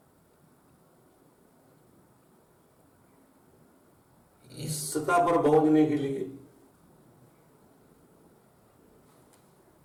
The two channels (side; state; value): both; identical; correlation 1.00